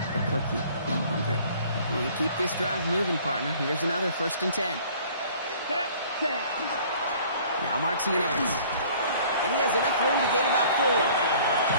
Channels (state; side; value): inverted; both; correlation -0.53